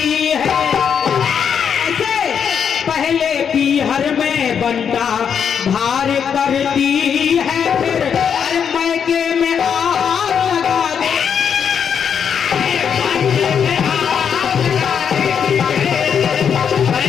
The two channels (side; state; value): right; quieter; 7.5 dB